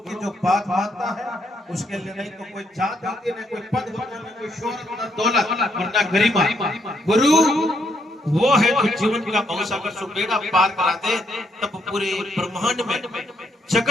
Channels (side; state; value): both; normal; correlation 0.74